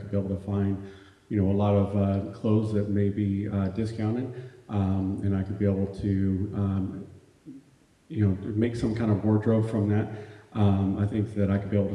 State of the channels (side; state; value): both; identical; correlation 1.00